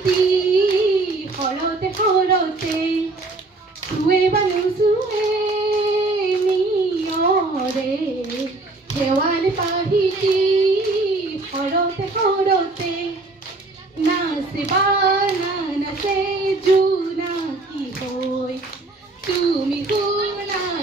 সৰতে সৰতে সুৱে বানু সুৱে নিয়ৰে শেৱালি পাহিতি সৰতে সৰতে নাচিবা নাচে জোনাকী হৈ তুমি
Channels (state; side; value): quieter; left; 3.2 dB